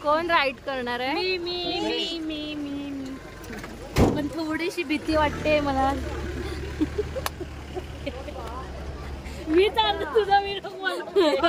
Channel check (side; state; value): both; identical; correlation 1.00